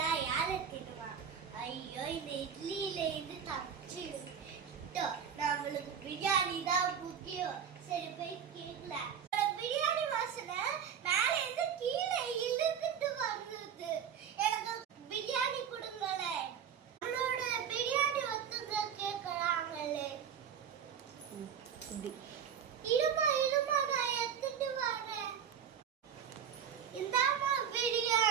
யாரை தின்னுவா? ஐயோ, இந்த இட்லியில இருந்து தப்பிச்சு நம்மளுக்கு பிரியாணி தான் முக்கியம். சரி போய் கேட்கலாம். பிரியாணி வாசனை மேல இருந்து கீழே இழுத்துட்டு வருது. எனக்கு பிரியாணி கொடுங்களே. நம்மளோட பிரியாணி ஒத்துக்க கேட்கறாங்களே. இருமா இருமா, நான் எடுத்துட்டு வரேன். இந்தாமா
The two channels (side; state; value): left; quieter; 8.0 dB